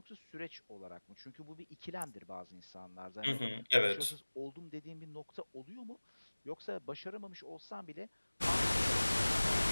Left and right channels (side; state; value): both; inverted; correlation -1.00